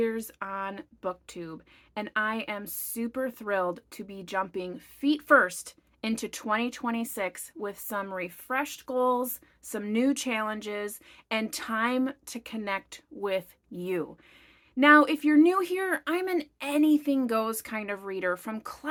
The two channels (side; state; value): both; identical; correlation 1.00